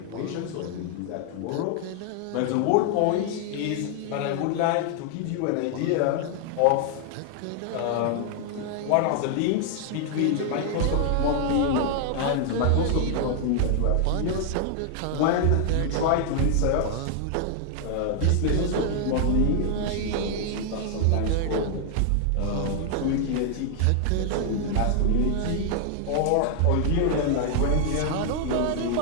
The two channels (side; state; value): both; different; correlation 0.00